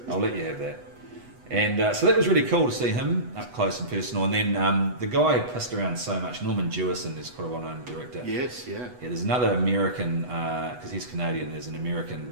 I'll let you have that. And so that was really cool to see him up close and personal. And then the guy who pissed around so much, Norman Jewison, is quite a well-known director. Yes, yeah. There's another American, because he's Canadian, there's an American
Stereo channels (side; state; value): left; late; 8.1 ms